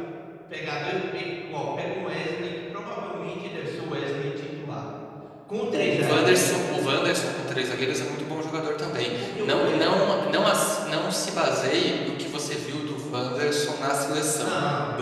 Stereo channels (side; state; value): both; identical; correlation 1.00